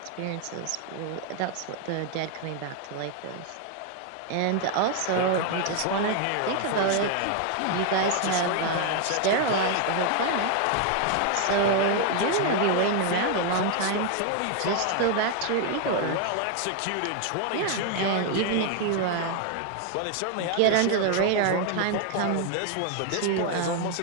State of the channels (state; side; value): different; both; correlation 0.00